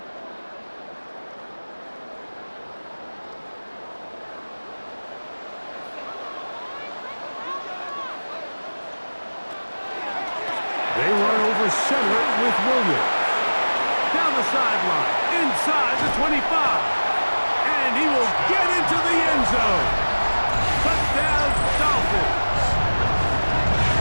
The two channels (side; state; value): both; inverted; correlation -1.00